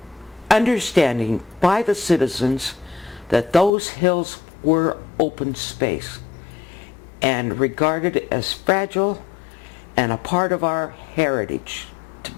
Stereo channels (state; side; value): drops out; right; at 3.7 s